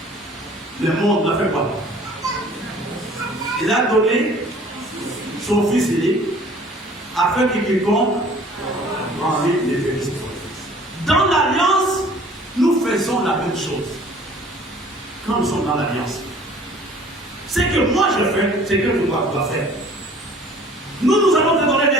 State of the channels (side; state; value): both; normal; correlation 0.51